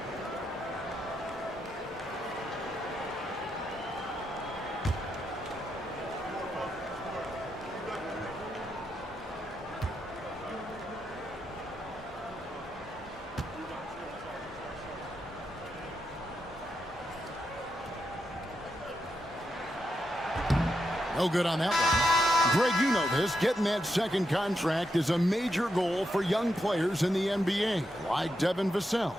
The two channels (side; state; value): both; normal; correlation 0.84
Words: No good on that one. Greg, you know this. Getting that second contract is a major goal for young players in the NBA, like Devin Vassell.